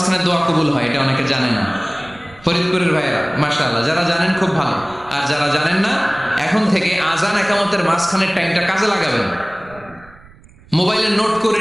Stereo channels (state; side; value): noise; right; rumble, 24 dB below the sound